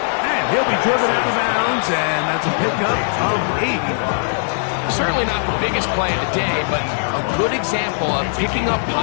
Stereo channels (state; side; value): silent; right; digital silence